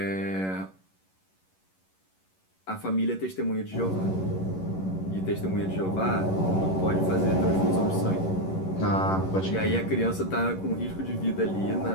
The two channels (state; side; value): late; right; 11 ms